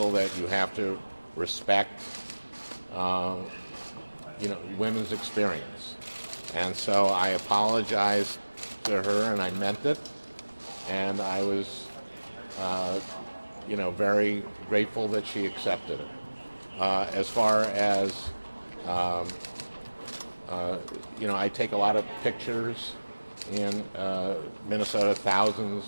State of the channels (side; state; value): both; inverted; correlation -1.00